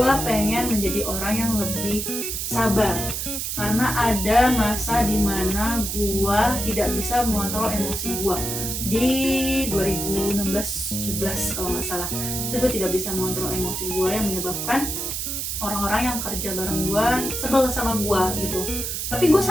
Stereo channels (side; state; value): right; noise; hiss, 3 dB below the sound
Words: pengen menjadi orang yang lebih sabar. Karena ada masa dimana gue tidak bisa mengontrol emosi gue di 2016-17 kalau nggak salah. Itu gue tidak bisa mengontrol emosi gue yang menyebabkan orang-orang yang kerja bareng gue sebel sama gue gitu. Tapi gue